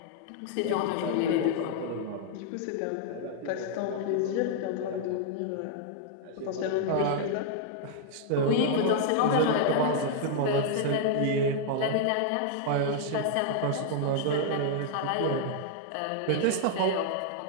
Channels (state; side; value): different; both; correlation -0.01